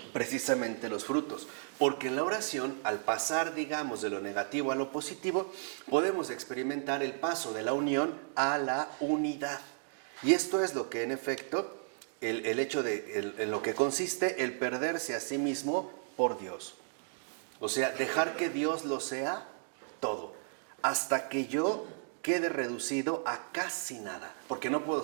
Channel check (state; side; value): silent; left; digital silence